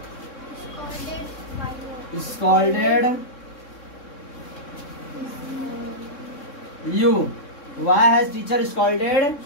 scolded you? Why has teacher scolded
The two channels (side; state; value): right; late; 3.6 ms